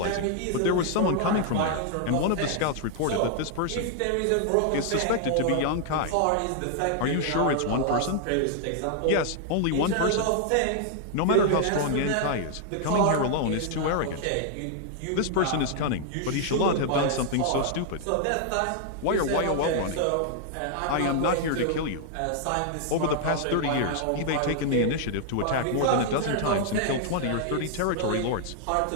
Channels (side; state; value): both; different; correlation 0.00